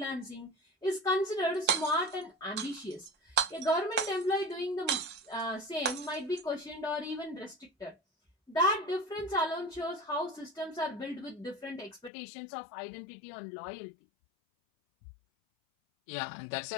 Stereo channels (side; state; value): right; drops out; at 12.1 s